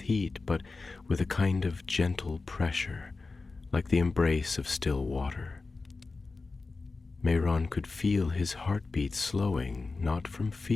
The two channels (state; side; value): quieter; right; 3.8 dB